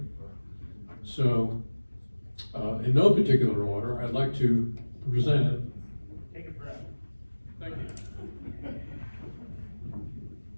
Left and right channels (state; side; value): inverted; both; correlation -1.00